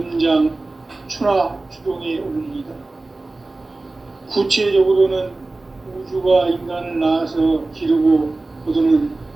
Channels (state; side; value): quieter; left; 3.2 dB